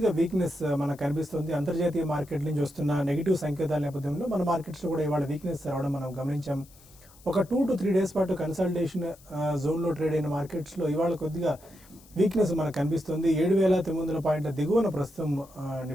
వీక్నెస్ మనకు కనిపిస్తుంది. అంతర్జాతీయ మార్కెట్ నుంచి వస్తున్న నెగిటివ్ సంకేతాల నేపథ్యంలో మన మార్కెట్స్లో కూడా ఇవాళ వీక్నెస్ రావడం మనం గమనించాం. ఒక 2 to 3 డేస్ పాటు కన్సల్టేషన్ జోన్లో ట్రేడ్ అయిన మార్కెట్స్లో ఇవాళ కొద్దిగా వీక్నెస్ మనకు కనిపిస్తుంది. 7,900 పాయింట్ల దిగువన ప్రస్తుతం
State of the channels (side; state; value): left; noise; hiss, 25 dB below the sound